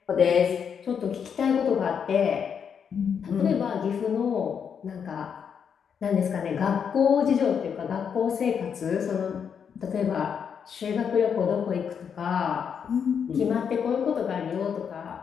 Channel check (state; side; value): quieter; right; 7.2 dB